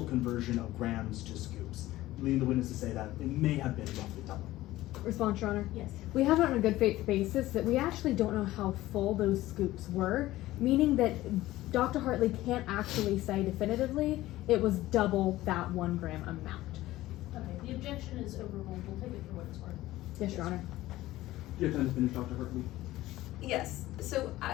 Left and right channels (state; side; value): quieter; right; 16.4 dB